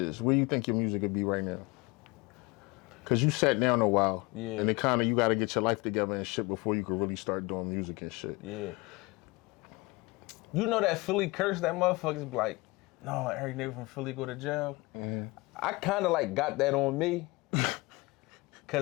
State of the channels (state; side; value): quieter; right; 24.1 dB